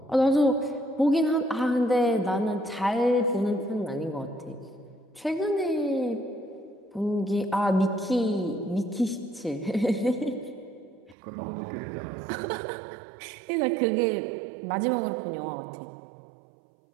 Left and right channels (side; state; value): left; drops out; at 11.2 s